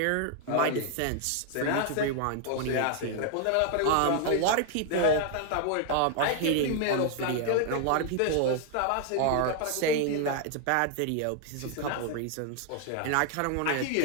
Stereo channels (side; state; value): both; different; correlation 0.00